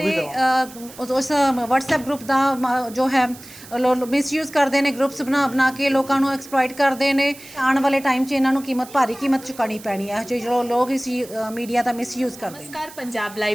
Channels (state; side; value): noise; right; hiss, 18 dB below the sound